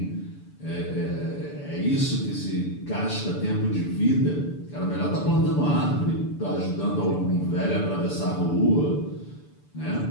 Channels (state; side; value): late; right; 6.9 ms